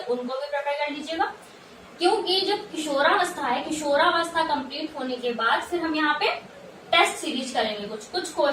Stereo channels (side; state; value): both; identical; correlation 1.00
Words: उनको भी प्रिपेयर कर लीजिएगा। क्योंकि जो किशोरावस्था है, किशोरावस्था कंप्लीट होने के बाद फिर हम यहाँ पे टेस्ट सीरीज करेंगे, कुछ